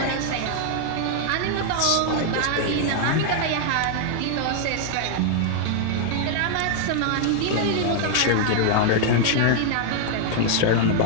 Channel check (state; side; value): different; both; correlation 0.00